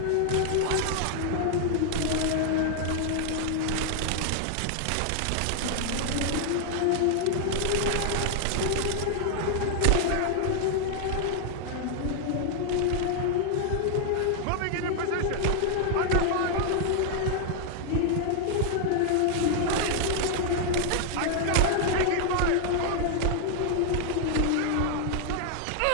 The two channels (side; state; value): both; different; correlation 0.00